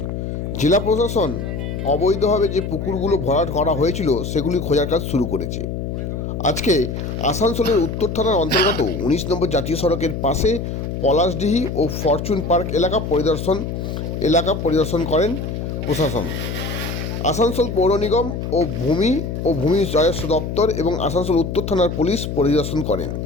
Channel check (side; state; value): left; noise; hum, 4 dB below the sound